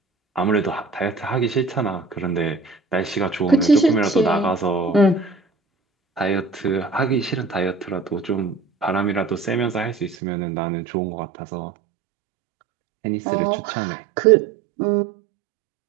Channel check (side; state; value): left; drops out; at 10.2 s